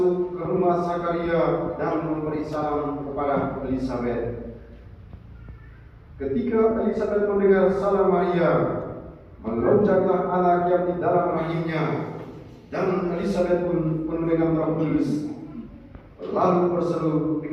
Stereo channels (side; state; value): both; identical; correlation 1.00